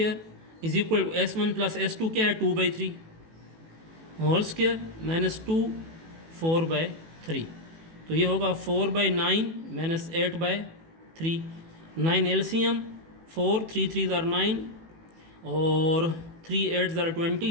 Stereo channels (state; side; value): late; left; 18 ms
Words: is equal to S1 plus S2 क्या है 2/3 होल स्क्वायर -2 4/3। तो ये होगा 4/9 -8/3। 9 एलसीएम 4 3 3 आर 9 और 3 8 आर